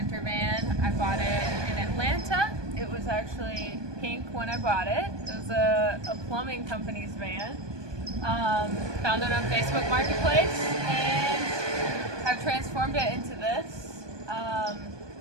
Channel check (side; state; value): left; late; 1.2 ms